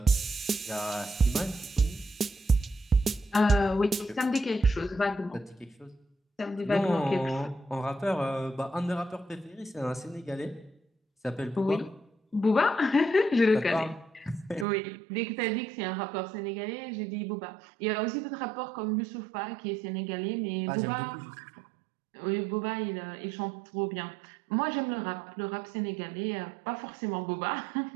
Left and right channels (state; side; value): drops out; left; at 14.7 s